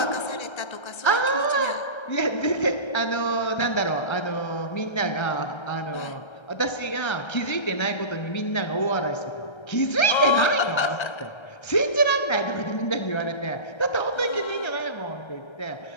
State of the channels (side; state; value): right; late; 1.3 ms